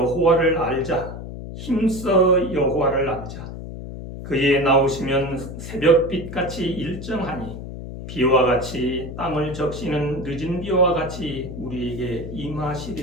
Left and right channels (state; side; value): noise; left; hum, 9 dB below the sound